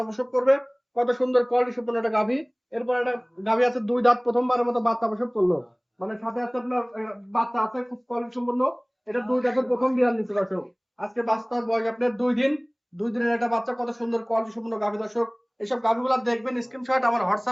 প্রসব করবে। কত সুন্দর কোয়ালিটি সম্পন্ন একটা গাভী। এরপর একটা গাভী আছে 2 দাঁত, প্রথমবারের মতো বাচ্চা প্রসব করলো। মানে সাথে আছে আপনার বাচ্চা আছে খুব কোয়ালিটি সম্পন্ন। এটা 2 দাঁতের প্রথম বিয়ান নিচ্ছে দর্শক। আজকে বাচ্চার বয়স আপনার 2 দিন। 2 দিনের একটা বাচ্চা, কত সুন্দর কোয়ালিটি সম্পন্ন গাভী দর্শক। এইসব গাভীগুলো দেখবেন, স্ক্রিনশট আমার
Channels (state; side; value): identical; both; correlation 1.00